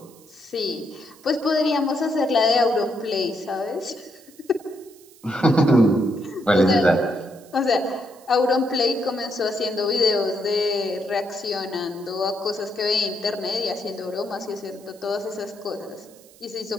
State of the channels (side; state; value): right; noise; hiss, 25 dB below the sound